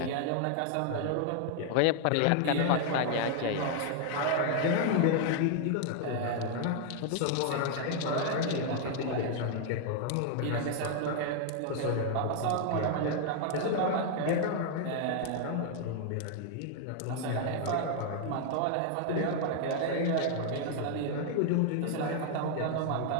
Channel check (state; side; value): different; both; correlation 0.00